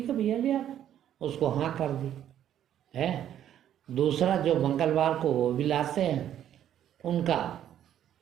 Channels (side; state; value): left; quieter; 10.7 dB